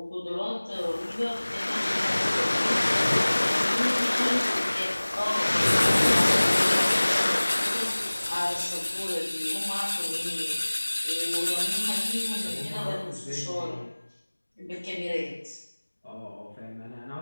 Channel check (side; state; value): both; inverted; correlation -1.00